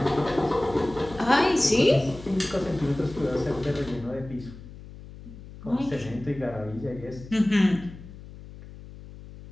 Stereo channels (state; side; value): noise; left; hum, 16 dB below the sound